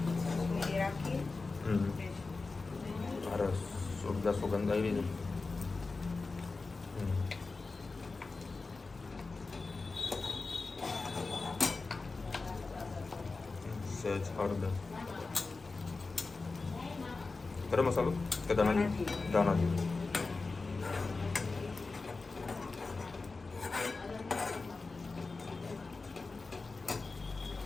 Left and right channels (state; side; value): quieter; right; 3.9 dB